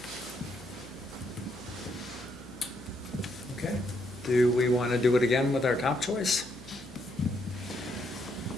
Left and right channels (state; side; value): noise; left; hum, 20 dB below the sound